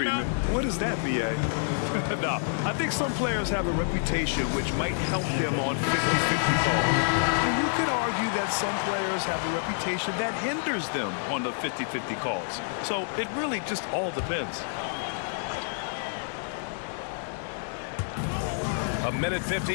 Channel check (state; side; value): silent; right; digital silence